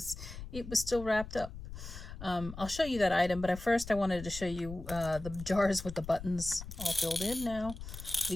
it was still wrapped up. I'll show you that item, but at first I wanted to show you the jars with the buttons all filled in now.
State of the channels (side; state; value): left; noise; rumble, 11 dB below the sound